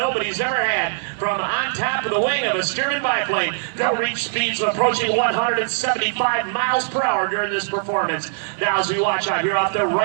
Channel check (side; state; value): left; silent; digital silence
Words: ever had. From on top of the wing of a Stearman biplane, they'll reach speeds approaching 175 miles per hour during this performance. Now as we watch out here off the